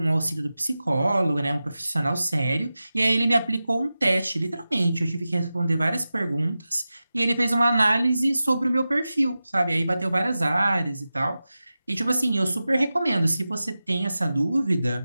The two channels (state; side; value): inverted; both; correlation -0.94